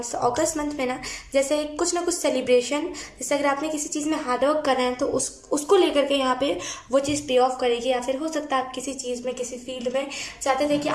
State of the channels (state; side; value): identical; both; correlation 1.00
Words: तो अगस्त मंथ में ना जैसे कुछ ना कुछ सेलिब्रेशन, जैसे अगर आपने किसी चीज़ में हार्डवर्क कर रहे हैं तो उसको लेकर के यहाँ पे वो चीज़ पे ऑफ करेगी, या फिर हो सकता है आप किसी चीज़ में किसी फील्ड में चाहते थे कि